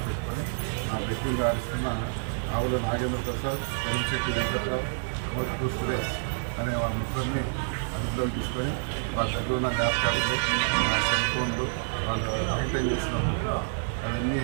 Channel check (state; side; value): silent; left; digital silence